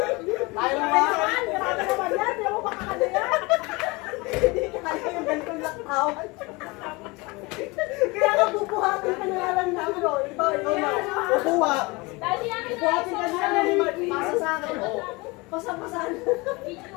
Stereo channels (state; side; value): quieter; right; 25.0 dB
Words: Tayo ba? Grabe naman yan, di mo makakala yan. Hindi kaya yung ganitong laktawan. Kaya ka bubuhatin ka na lang namin, no? Iba, ikaw na. Bubuha. Bubuhatin ka na lang namin. Pasa sa akin, oh. Pasa-pasan.